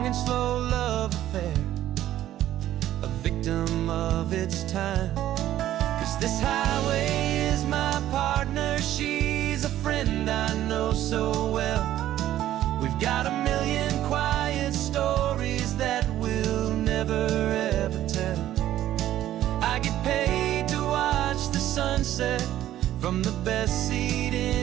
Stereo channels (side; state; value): left; quieter; 12.9 dB